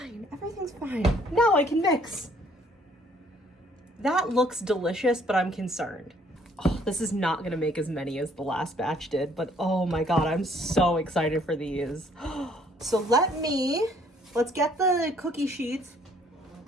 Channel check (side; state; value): both; normal; correlation 0.62